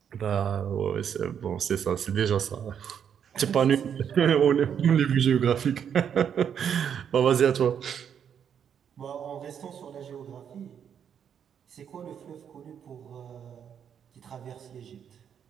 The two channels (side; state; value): left; quieter; 8.2 dB